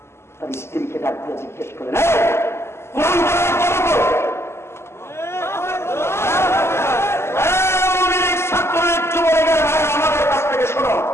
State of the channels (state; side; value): late; right; 0.12 ms